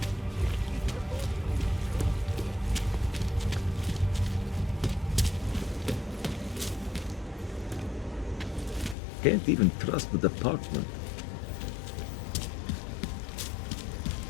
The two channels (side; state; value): right; drops out; at 9.0 s